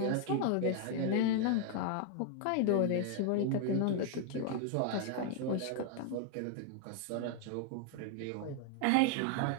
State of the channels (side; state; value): both; different; correlation 0.00